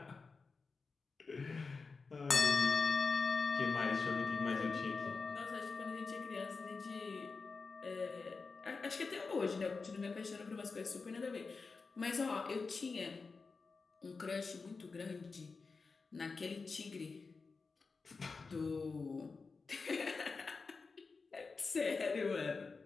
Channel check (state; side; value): quieter; right; 4.5 dB